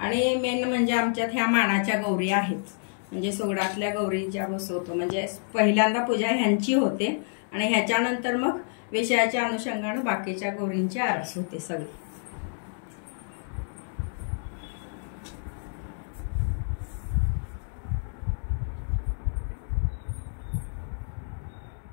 मेन म्हणजे आमच्यात ह्या मानाच्या गौरी आहेत. म्हणजे सोगडातल्या गौरी ज्या बसवतो म्हणजे पहिल्यांदा पूजा ह्यांची होते आणि ह्याच्यानंतर मग विषयाच्या अनुषंगाने बाकीच्या गौरींची आरास होते सगळी.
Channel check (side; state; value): right; silent; digital silence